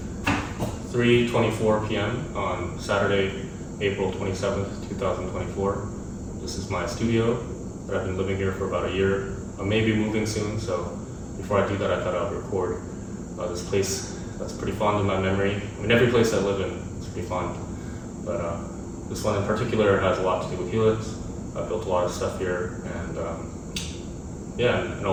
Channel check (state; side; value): identical; both; correlation 1.00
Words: 3:24 p.m. on Saturday, April 27th, 2024. This is my studio that I've been living here for about a year. I may be moving soon, so before I do that, I thought I would record this place that's pretty fond in my memory. I mean, every place I live in is pretty fond, but this one in particular has a lot to do with HELIX. I built a lot of stuff here, and and